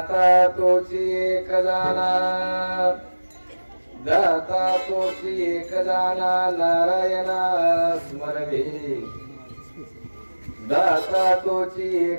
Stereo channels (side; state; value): both; inverted; correlation -1.00